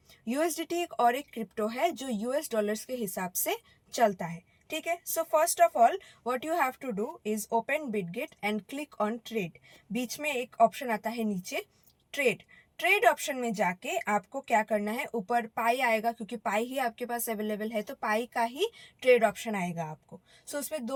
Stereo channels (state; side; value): identical; both; correlation 1.00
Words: USDT एक और एक crypto है जो US dollars के हिसाब से चलता है। ठीक है। So first of all what you have to do is open Bitget and click on trade. बीच में एक ऑप्शन आता है नीचे ट्रेड। ट्रेड ऑप्शन में जाके आपको क्या करना है, ऊपर पाई आएगा, क्योंकि पाई ही आपके पास अवेलेबल है तो पाई का ही ट्रेड ऑप्शन आएगा आपको। सो उसमें